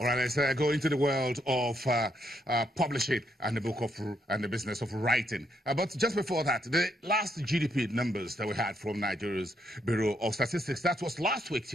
right, let's go into the world of publishing and the business of writing. But just before that, the last GDP numbers that we had from Nigeria's Bureau of Statistics, that was last week,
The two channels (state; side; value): normal; both; correlation 0.76